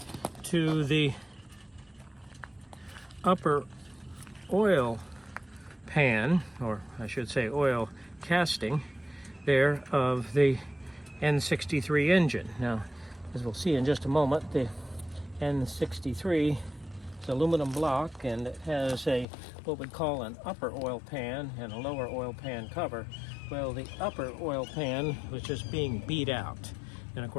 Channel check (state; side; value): drops out; right; at 19.2 s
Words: to the upper oil pan, or I should say oil casting there, of the N63 engine. Now, as we'll see in just a moment, the N63 is aluminum block, and it has what we'd call an upper oil pan and a lower oil pan cover. Well, the upper oil pan was just being beat out, and of